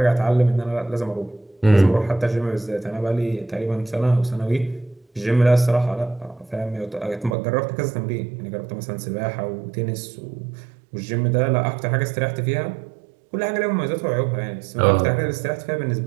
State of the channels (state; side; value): drops out; left; at 7.4 s